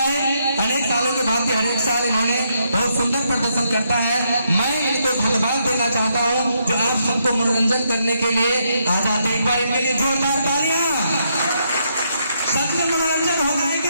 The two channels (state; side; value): inverted; both; correlation -0.77